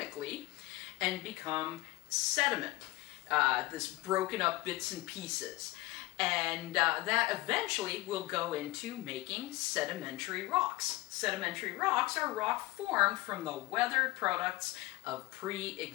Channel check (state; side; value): quieter; right; 20.2 dB